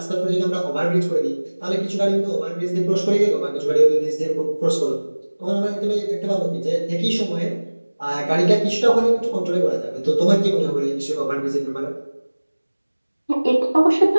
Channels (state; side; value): inverted; both; correlation -1.00